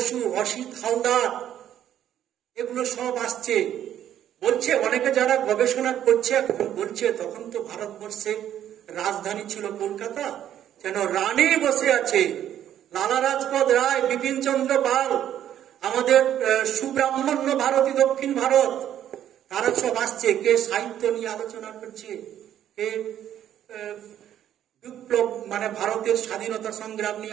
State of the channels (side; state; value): left; quieter; 10.8 dB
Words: অসিত হালদার, এগুলো সব আসছে। বলছে অনেকে যারা গবেষণা করছে এখন বলছে তখন তো ভারতবর্ষের রাজধানী ছিল কলকাতা, যেন রানী বসে আছে। লালা রাজপথ রায়, বিপিন চন্দ্র পাল, আমাদের সুব্রাহ্মণ্য ভারতী দক্ষিণ ভারত, তারা সব আসছে। কে সাহিত্য নিয়ে আলোচনা করছে, কে বিপ্লব মানে ভারতের স্বাধীনতা সংগ্রাম